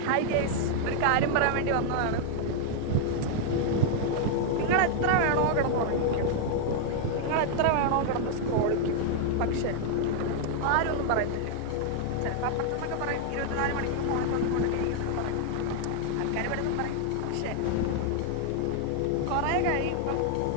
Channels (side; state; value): both; different; correlation 0.00